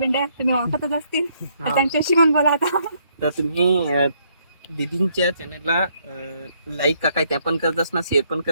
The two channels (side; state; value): both; inverted; correlation -0.71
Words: तुम्ही ओळखतच असतील, तर त्यांच्याशी पण बोला आता. तर तुम्ही दीदींच्या चॅनलला लाईक का काय त्या पण करतास ना, शेअर पण